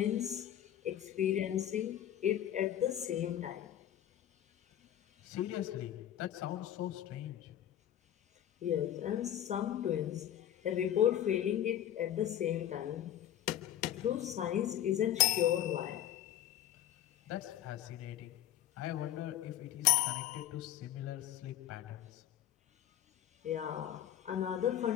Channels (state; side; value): quieter; right; 11.5 dB